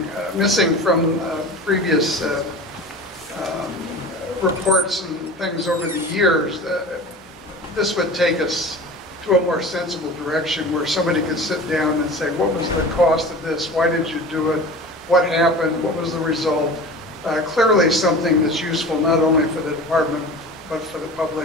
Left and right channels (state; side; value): normal; both; correlation 0.36